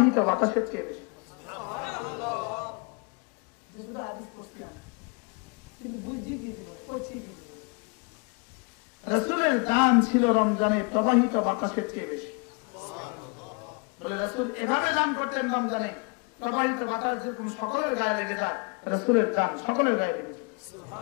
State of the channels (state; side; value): quieter; right; 32.2 dB